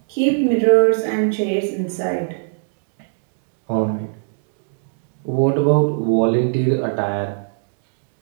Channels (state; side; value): silent; left; digital silence